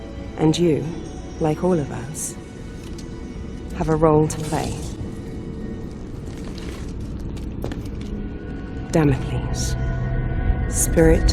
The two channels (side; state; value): both; identical; correlation 1.00